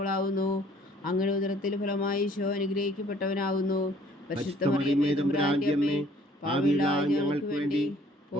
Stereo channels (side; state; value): both; normal; correlation 0.58